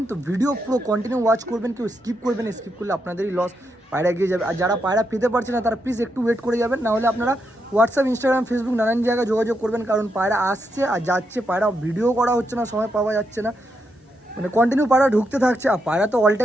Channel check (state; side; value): normal; both; correlation 0.82